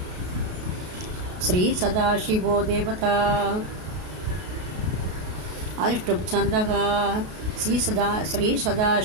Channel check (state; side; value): late; left; 33 ms